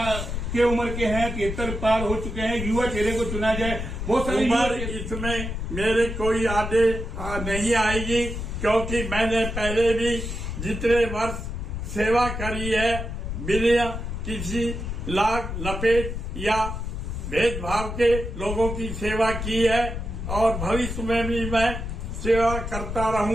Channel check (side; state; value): left; noise; rumble, 5 dB below the sound